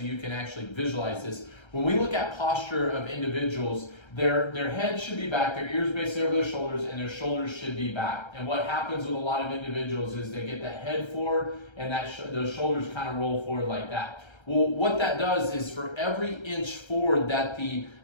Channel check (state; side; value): late; right; 1.3 ms